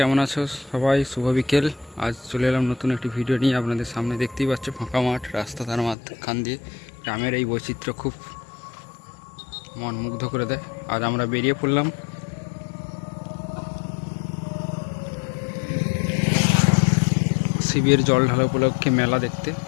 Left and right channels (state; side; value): drops out; right; at 6.0 s